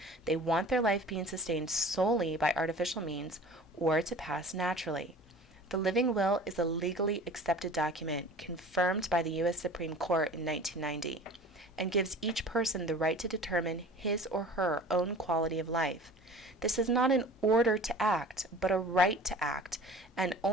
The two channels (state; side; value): normal; both; correlation 0.42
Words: they want their life being sustained solely by artificial means or to pass naturally. The living will is a legally accepted document confirmed by the U.S. Supreme Court in 1990 and gives each person the right to determine his or her own quality of life. This is not an order to act, but a right to act, and